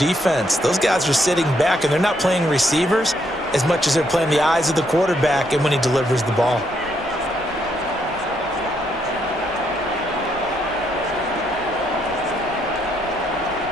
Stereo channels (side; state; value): both; normal; correlation 0.74